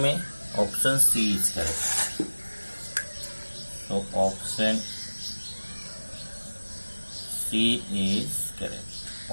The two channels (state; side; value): inverted; both; correlation -1.00